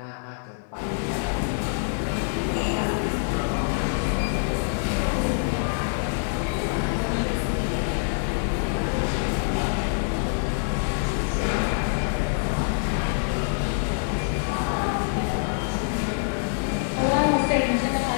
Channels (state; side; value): silent; right; digital silence